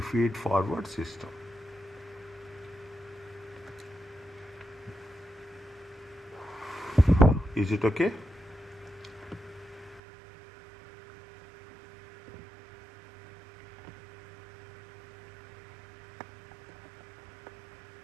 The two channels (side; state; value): left; drops out; at 10.0 s